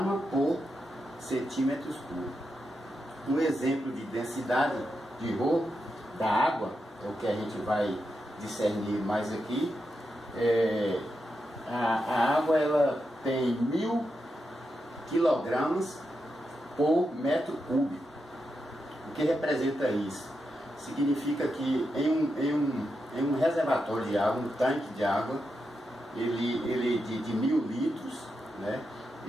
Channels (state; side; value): normal; both; correlation 0.86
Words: por centímetros cúbicos. Um exemplo de densidade de Rho da água, é o que a gente vai discernir mais aqui. A água ela tem 1000 quilogramas por metro cúbico. O que representa isso? Significa que em um reservatório de água, um tanque de água, ele de 1000 litros, né,